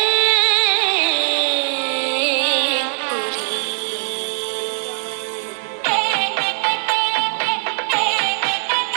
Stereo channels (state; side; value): silent; left; digital silence